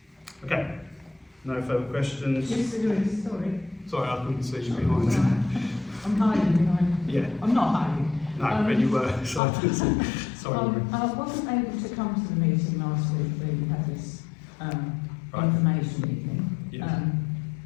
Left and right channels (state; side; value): drops out; right; at 9.4 s